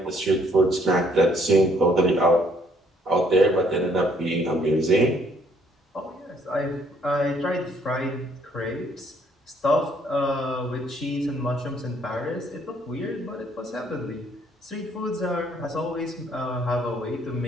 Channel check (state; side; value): normal; both; correlation 0.65